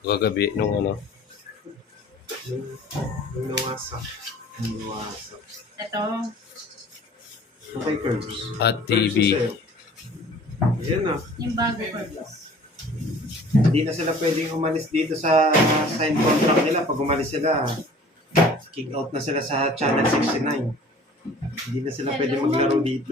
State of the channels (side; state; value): both; normal; correlation 0.48